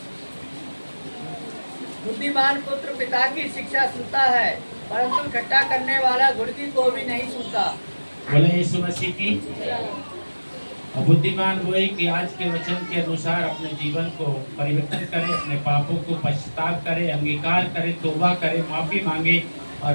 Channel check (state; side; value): inverted; both; correlation -1.00